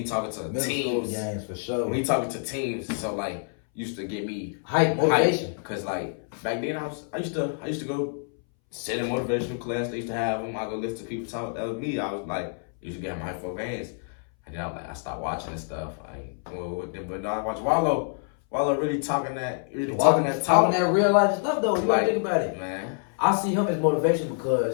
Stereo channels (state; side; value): silent; right; 60 dB below the other